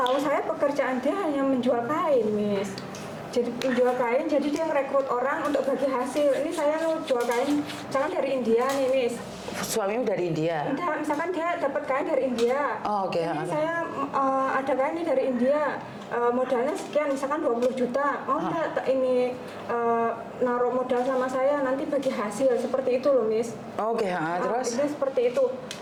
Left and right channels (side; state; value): both; identical; correlation 1.00